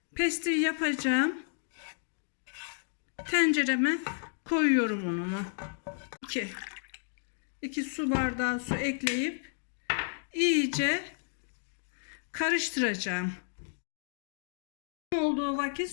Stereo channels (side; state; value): right; silent; digital silence